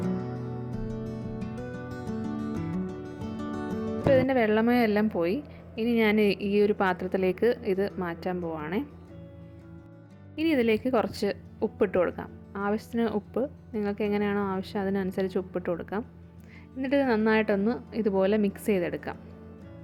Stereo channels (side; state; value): both; identical; correlation 1.00